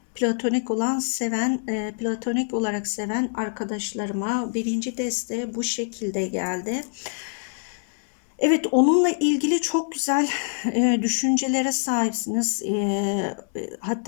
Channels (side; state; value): right; silent; 62 dB below the other